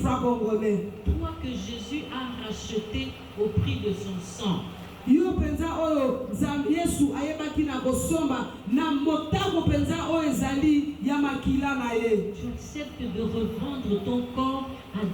congolais. Toi que Jésus a racheté au prix de son sang. Yo penza oyo Nzambe Yesu ayebaki na kosomba na motako penza oyo ezali ya makila na ye. Tu acceptes de revendre ton corps à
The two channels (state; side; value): identical; both; correlation 1.00